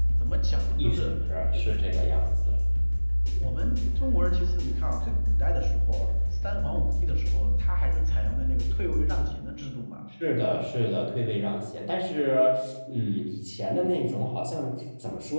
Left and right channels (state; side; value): inverted; both; correlation -1.00